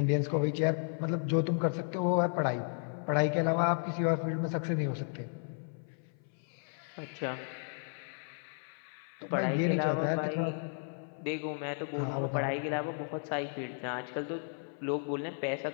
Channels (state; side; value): silent; right; 55 dB below the other